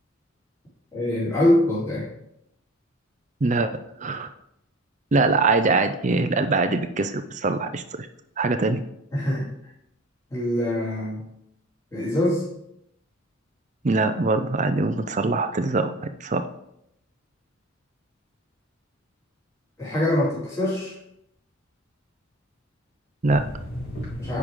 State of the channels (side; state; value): both; normal; correlation 0.43